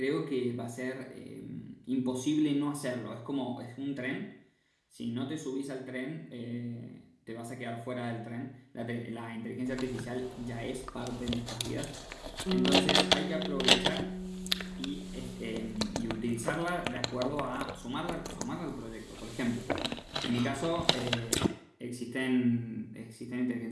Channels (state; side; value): identical; both; correlation 1.00